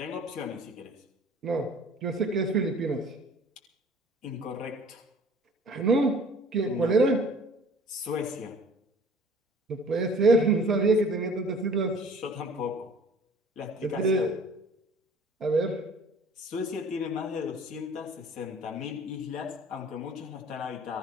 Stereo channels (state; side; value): normal; both; correlation 0.50